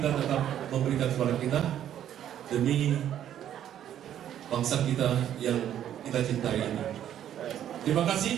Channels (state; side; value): quieter; left; 10.7 dB